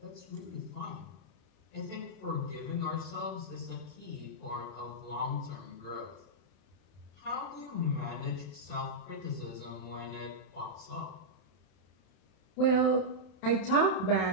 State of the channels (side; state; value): right; late; 31 ms